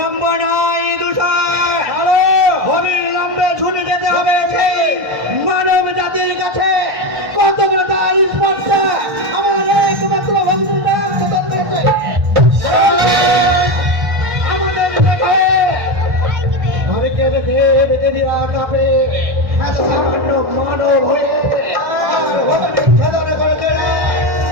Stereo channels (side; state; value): left; late; 1.1 ms